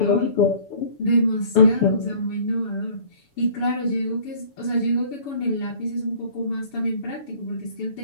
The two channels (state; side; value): late; right; 7.0 ms